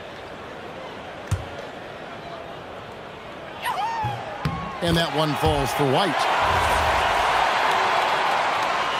And that one falls for White.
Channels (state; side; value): identical; both; correlation 1.00